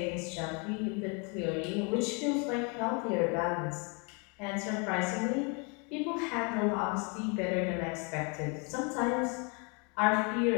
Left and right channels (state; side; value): quieter; right; 33.9 dB